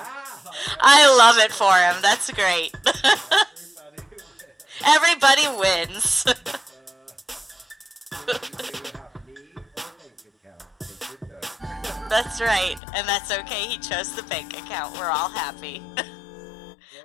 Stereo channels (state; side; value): drops out; right; at 12.8 s